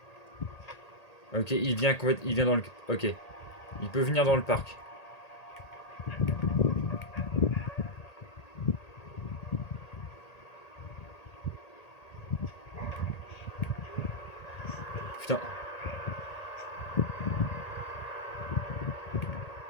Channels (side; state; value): right; late; 1.8 ms